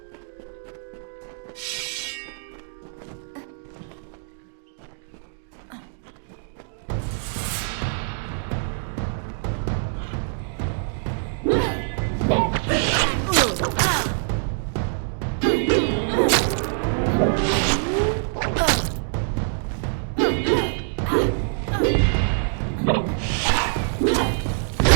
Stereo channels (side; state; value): left; silent; digital silence